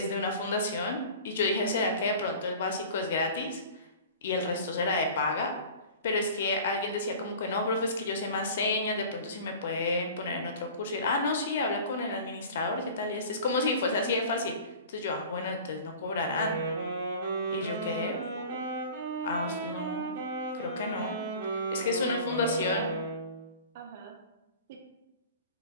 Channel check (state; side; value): inverted; both; correlation -0.41